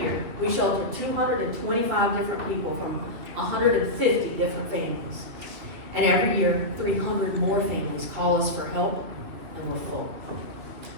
we shelter 225 different people from 150 different families. And every year, 300 more families call us for help, and we're full.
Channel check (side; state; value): left; late; 2.9 ms